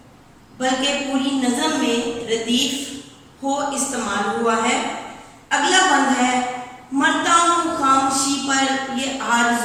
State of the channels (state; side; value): identical; both; correlation 1.00